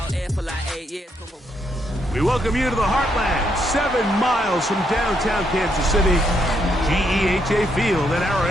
here for like 8 years. We welcome you to the Heartland, 7 miles from downtown Kansas City. GEHA Field at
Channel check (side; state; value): both; normal; correlation 0.76